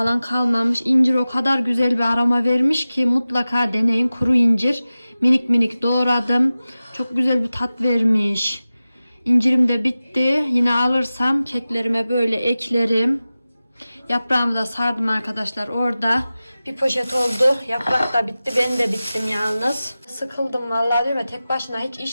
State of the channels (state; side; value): inverted; both; correlation -0.96